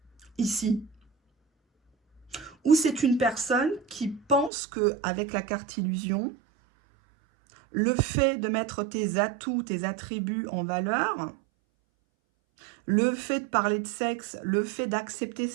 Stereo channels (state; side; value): drops out; left; at 4.5 s